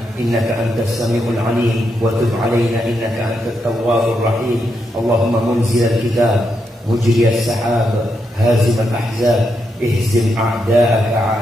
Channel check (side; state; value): both; normal; correlation 0.82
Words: innaka antas sami'ul 'alim wa tub 'alaina innaka antat tawwabur rahim. Allahumma munzilal kitab مجري السحاب هازم الأحزاب اهزم أعداءك